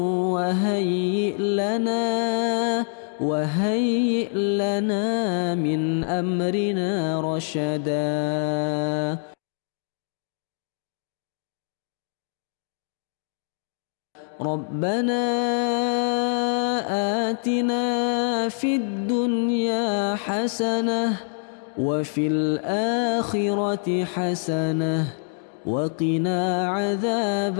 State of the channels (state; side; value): silent; right; digital silence